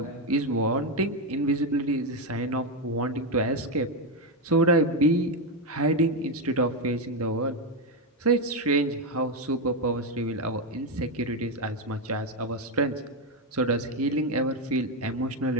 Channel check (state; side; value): normal; both; correlation 0.07